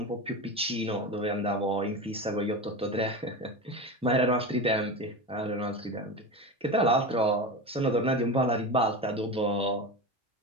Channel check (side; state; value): both; normal; correlation 0.24